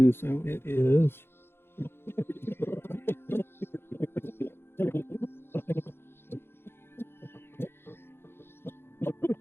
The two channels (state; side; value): late; right; 0.11 ms